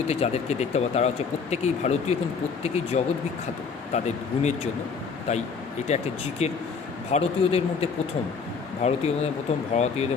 যাদেরকে দেখতে পাবো তারা হচ্ছে প্রত্যেকেই ভারতীয় এবং প্রত্যেকেই জগৎ বিখ্যাত তাদের গুণের জন্য। তাই এটা একটা জিকের ভারতীয়দের মধ্যে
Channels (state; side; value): quieter; right; 5.4 dB